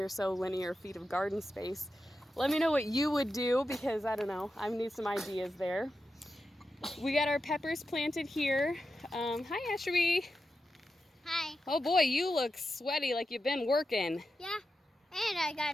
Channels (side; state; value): both; normal; correlation 0.89